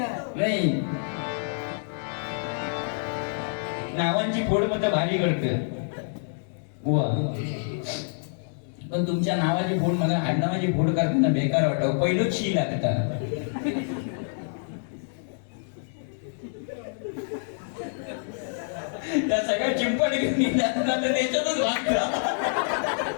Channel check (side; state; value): right; silent; digital silence